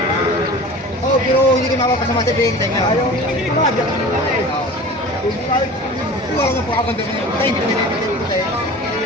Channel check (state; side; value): normal; both; correlation 0.38